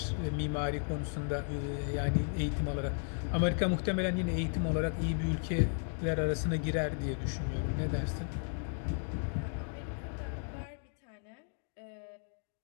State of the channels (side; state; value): right; silent; 55 dB below the other